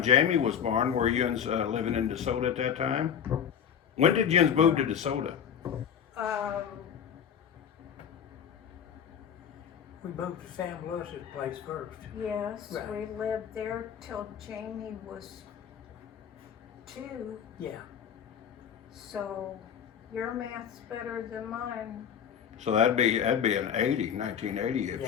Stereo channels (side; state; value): right; quieter; 8.3 dB